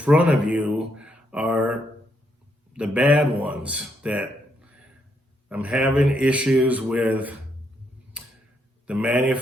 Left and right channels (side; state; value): both; normal; correlation 0.76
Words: of you are the bad ones that I'm having issues with the